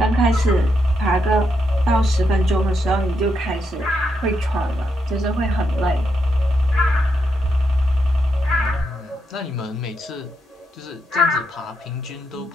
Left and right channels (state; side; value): normal; both; correlation 0.81